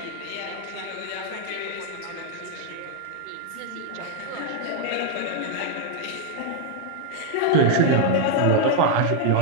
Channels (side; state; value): both; different; correlation 0.00